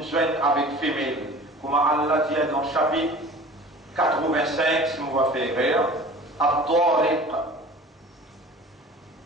joint avec femelle. Comme Allah dit dans le chapitre 85, si on va faire rire, At-Tariq.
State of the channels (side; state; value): both; normal; correlation 0.42